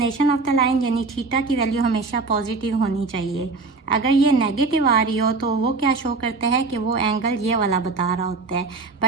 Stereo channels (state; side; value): quieter; left; 4.0 dB